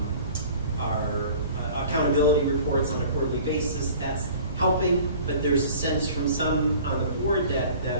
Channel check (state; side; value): inverted; both; correlation -0.46